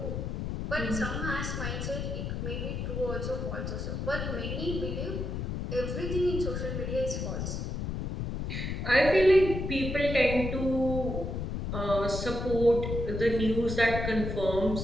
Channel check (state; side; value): noise; left; rumble, 3 dB below the sound